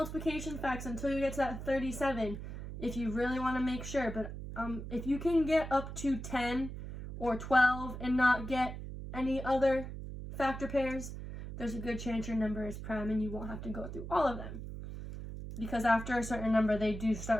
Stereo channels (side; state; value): right; noise; hum, 8 dB below the sound